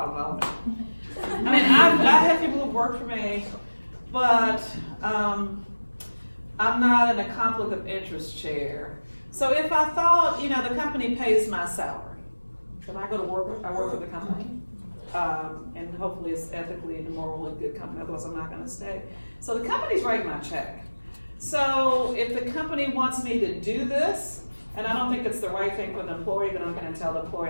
I mean, I have people who work for me, but I'm not in a conflict of interest chair. So if I thought, you know, the company pays my salary, should I go to work? I work for the company. And hopefully it's ethically and morally good company, otherwise I'm not gonna stay. So the company's writing my check. So if the company wants me to do this, and I don't think it's the right thing for the employee, then I'm gonna tell the employee,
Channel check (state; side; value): inverted; both; correlation -1.00